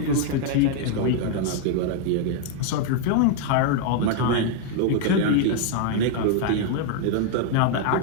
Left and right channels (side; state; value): both; different; correlation 0.00